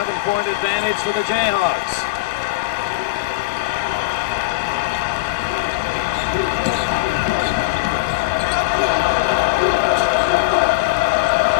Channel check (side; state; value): right; quieter; 20.9 dB